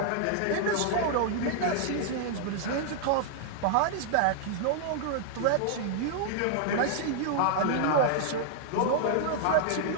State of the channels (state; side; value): different; both; correlation -0.01